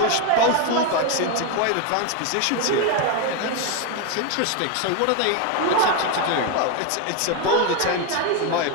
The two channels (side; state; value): both; different; correlation 0.02